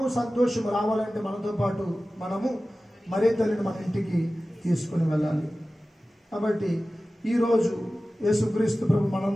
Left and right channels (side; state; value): both; normal; correlation 0.96